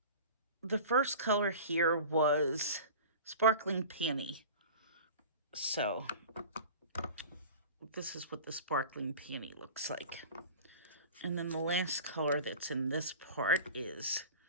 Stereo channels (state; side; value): inverted; both; correlation -0.37